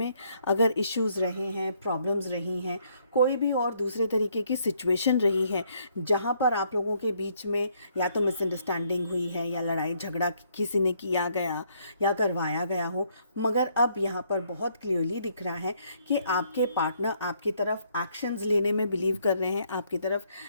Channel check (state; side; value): inverted; both; correlation -0.69